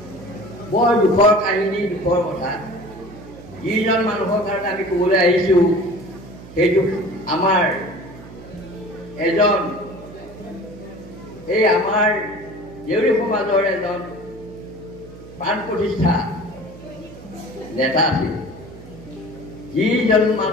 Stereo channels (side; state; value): right; noise; hum, 17 dB below the sound